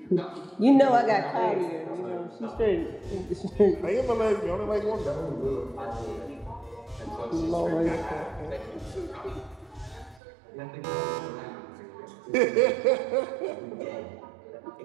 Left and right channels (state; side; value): drops out; left; at 10.2 s